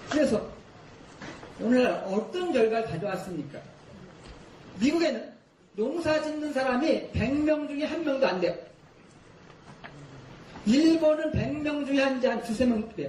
그래서 오늘날 어떤 결과를 가져왔습니까? 미국에는 농사 짓는 사람이 100명 중에 1명도 안 돼요. 일본은 100명 중에 한 2~3명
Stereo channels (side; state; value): both; identical; correlation 1.00